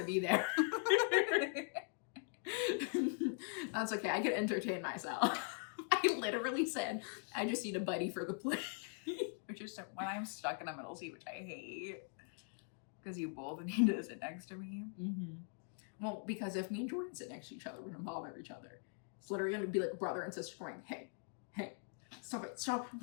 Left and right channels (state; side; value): silent; right; 50 dB below the other